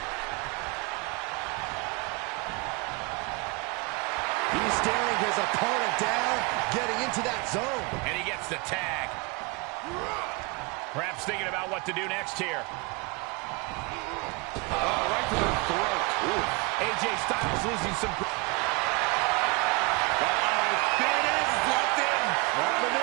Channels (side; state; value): left; quieter; 28.5 dB